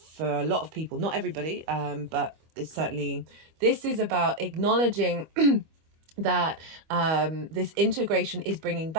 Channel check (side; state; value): left; late; 25 ms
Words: a lot of people. Not everybody, but it's certainly, this is about acknowledging that this integration is bringing